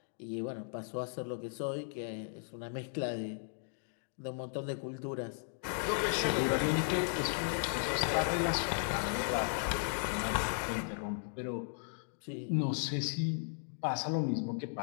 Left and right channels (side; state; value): right; silent; digital silence